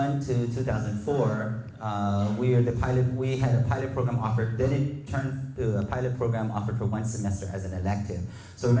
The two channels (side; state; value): both; identical; correlation 1.00